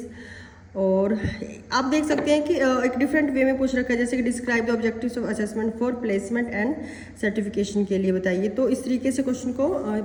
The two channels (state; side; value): identical; both; correlation 1.00